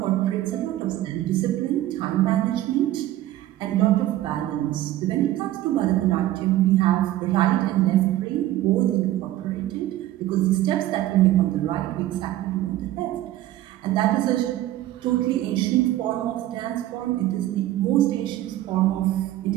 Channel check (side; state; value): left; quieter; 14.5 dB